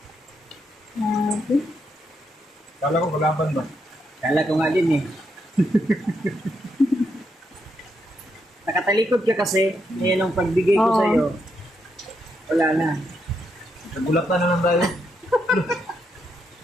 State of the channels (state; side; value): normal; both; correlation 0.79